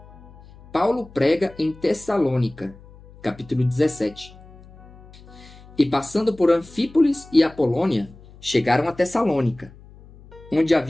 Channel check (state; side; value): noise; left; hum, 22 dB below the sound